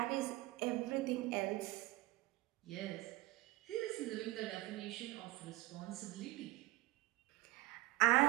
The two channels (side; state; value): left; quieter; 19.3 dB